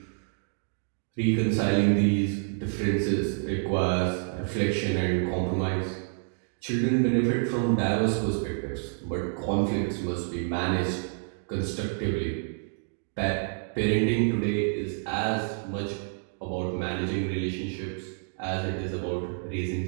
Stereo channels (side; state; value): left; silent; 59 dB below the other